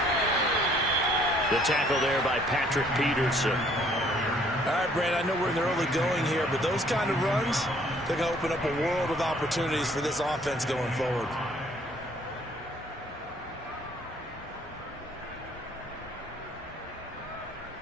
The tackle there by Patrick Peterson. All right, Brandon, I know we're in the early going here, but those kind of runs, they're going to open up a world of opportunities for this offense going forward.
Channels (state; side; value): normal; both; correlation 0.61